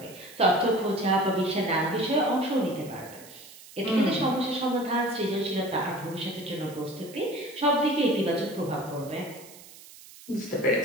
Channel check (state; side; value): noise; right; hiss, 19 dB below the sound